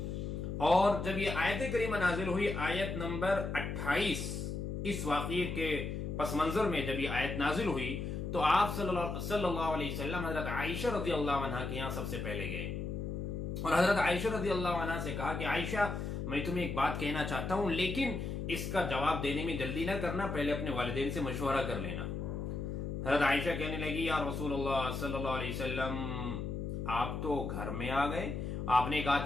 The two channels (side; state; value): left; noise; hum, 4 dB below the sound